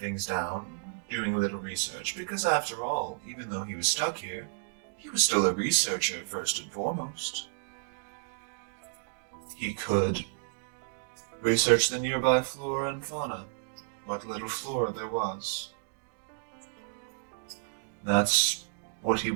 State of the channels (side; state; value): left; silent; digital silence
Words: down, doing a little research, because after all, even though he was stuck here, he was still a researcher first and foremost. He could research the nearby flora and fauna, what little flora there was. That's what he